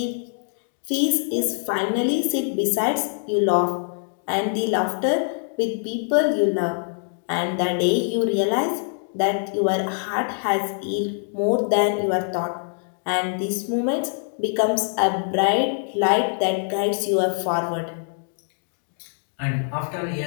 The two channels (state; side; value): silent; right; 63 dB below the other